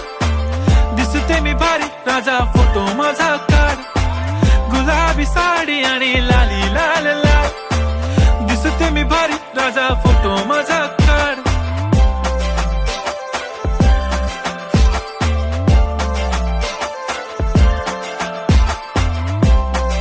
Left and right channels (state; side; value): identical; both; correlation 1.00